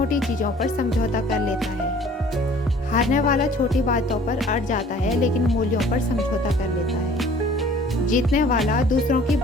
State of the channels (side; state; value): both; normal; correlation 0.51